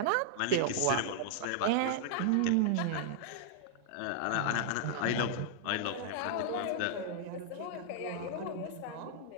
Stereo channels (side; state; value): both; different; correlation -0.01